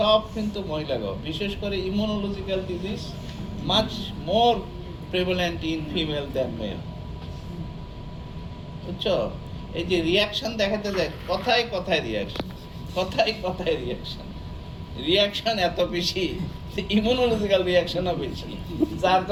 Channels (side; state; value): both; identical; correlation 1.00